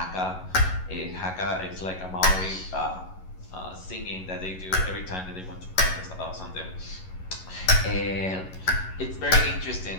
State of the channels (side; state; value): right; late; 11 ms